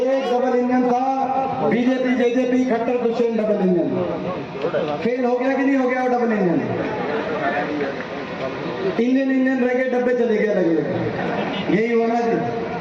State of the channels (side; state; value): both; identical; correlation 1.00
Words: डबल इंजन था BJP JJP Khattar Dushyant double engine. Fail हो गया कि नहीं हो गया वो डबल इंजन? इंजन रह गए, डब्बे चले गए लगे, यही होना जी।